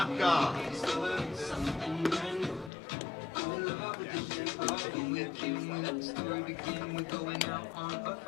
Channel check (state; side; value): drops out; right; at 2.7 s